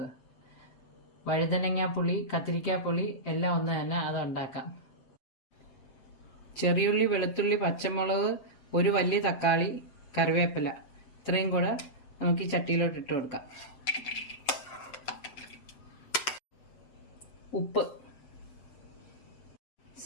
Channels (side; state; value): right; late; 7.8 ms